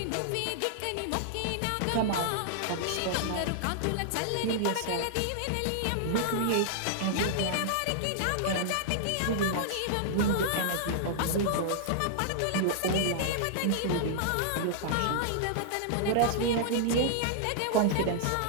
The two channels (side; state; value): both; different; correlation -0.01